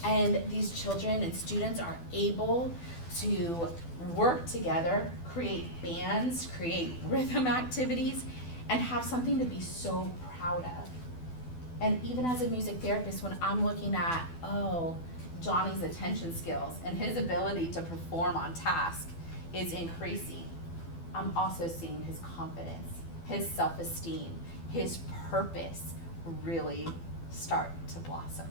and these children and students are able to work together, create bands, create rhythm activities, and have something to be so proud of. And even as a music therapist, when I'm looking at, Johnny's attention skills and his ability to perform on task is increasing, I'm also seeing his confidence, his self-esteem, his purpose really start to blossom.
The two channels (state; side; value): late; right; 12 ms